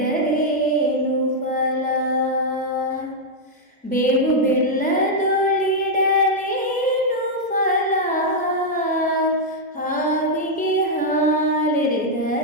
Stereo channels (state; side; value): normal; both; correlation -0.03